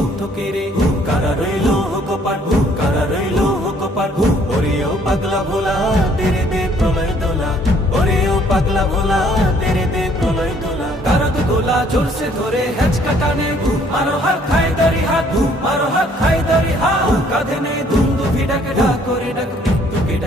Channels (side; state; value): both; normal; correlation 0.62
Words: কেড়ে কারা রইল কপাট কারা রইল কপাট ওরে ও পাগলা ভোলা তেরে দে প্রলয় দোলা ওরে ও পাগলা ভোলা তেরে দে প্রলয় দোলা কারক গোলা জোর সে ধরে হেঁচকা টানে মারো হাত খাই দারি হাত মারো হাত খাই দারি হাত কাঁধে নেই দুন্দু ভিড়াকে ডাক করে ডাক মৃত্যুকে